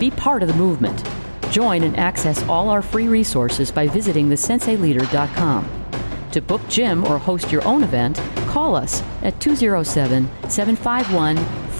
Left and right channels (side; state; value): both; inverted; correlation -1.00